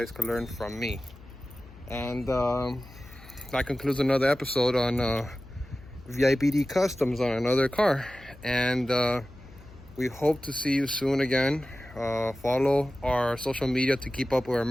can learn from me. And that concludes another episode on VIPD Customs on another car. And we hope to see you soon again. Follow our social media to keep up with our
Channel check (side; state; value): left; noise; hum, 20 dB below the sound